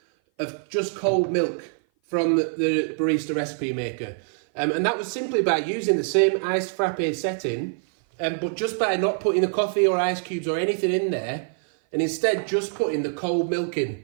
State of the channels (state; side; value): silent; left; 57 dB below the other